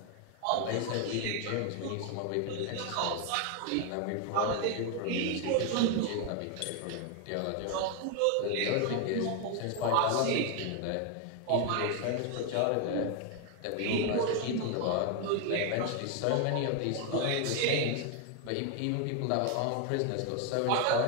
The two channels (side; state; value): both; different; correlation 0.01